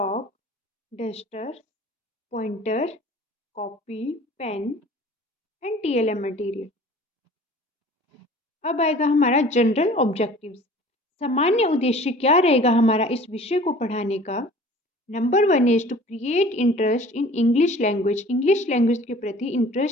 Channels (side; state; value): both; normal; correlation 0.47